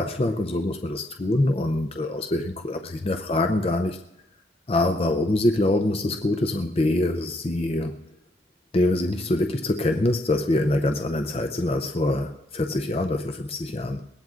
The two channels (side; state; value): both; normal; correlation 0.73